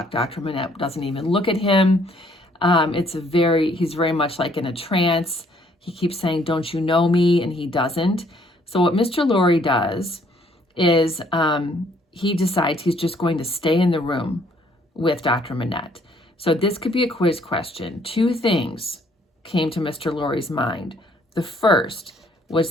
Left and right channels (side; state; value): both; normal; correlation 0.64